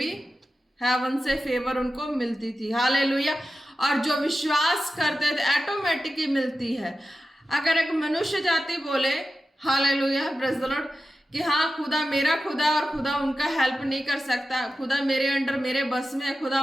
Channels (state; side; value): normal; both; correlation 0.93